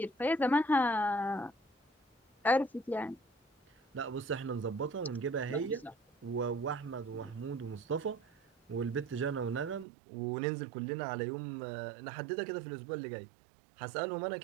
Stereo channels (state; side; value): drops out; left; at 9.9 s